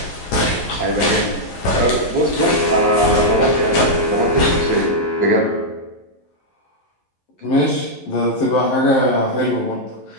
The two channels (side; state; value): right; late; 12 ms